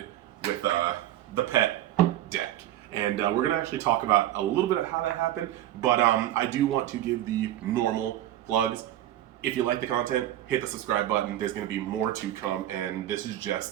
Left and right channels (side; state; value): left; quieter; 13.3 dB